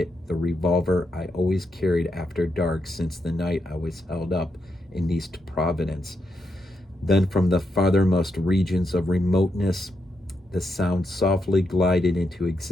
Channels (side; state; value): both; normal; correlation 0.82